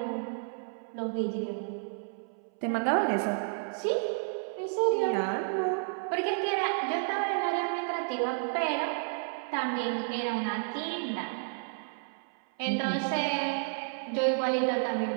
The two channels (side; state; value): left; silent; 57 dB below the other